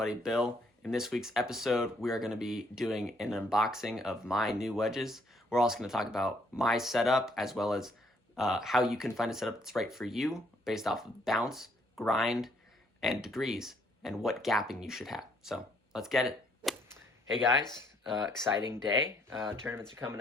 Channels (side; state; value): both; normal; correlation 0.68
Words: Bill. In this week's episode, we are going to be doing an unboxing of my new wedges. We're also going to talk about my setup as well as how you can find a setup that's right for you based off of bounce, grind, and degrees, and what gapping you should have. So let's get it. Hey guys, exciting day. Tournaments are coming